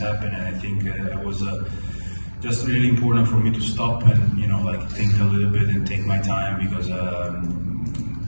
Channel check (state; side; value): inverted; both; correlation -1.00